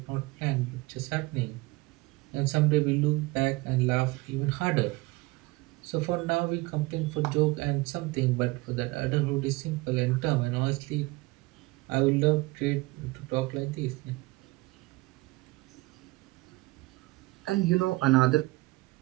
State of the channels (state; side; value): quieter; left; 22.3 dB